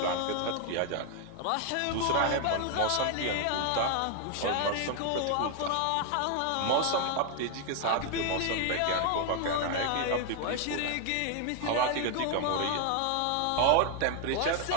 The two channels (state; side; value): different; both; correlation 0.00